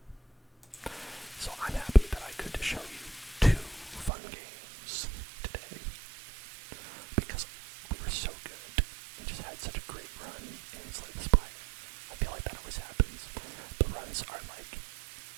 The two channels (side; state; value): left; drops out; at 4.1 s